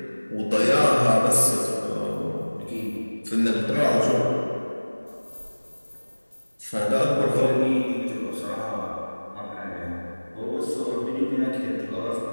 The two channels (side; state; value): both; inverted; correlation -1.00